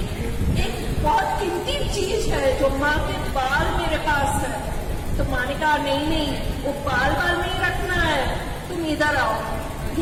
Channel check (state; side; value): identical; both; correlation 1.00